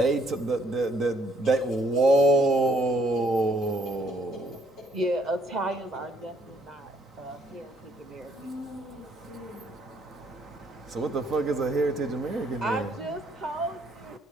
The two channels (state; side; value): normal; both; correlation 0.66